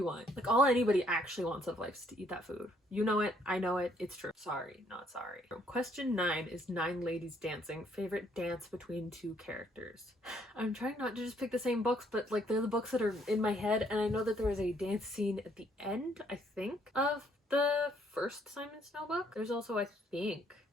want. Like, all anybody actually wants out of life is to eat that food. You know it. I know it. It's true. Sorry, not sorry. Question 9 is 9 Ladies Dancing. Favorite dance between 2 characters. I'm trying not to just pick the same books, but like, they're the books that are in my head. And I know that there was a dance scene at the end, I think, of the first Simon Snow book. There's also, I think,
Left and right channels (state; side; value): normal; both; correlation 0.67